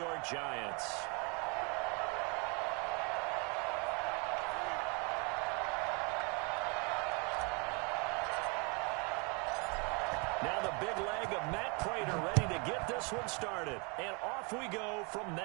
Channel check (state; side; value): quieter; left; 32.7 dB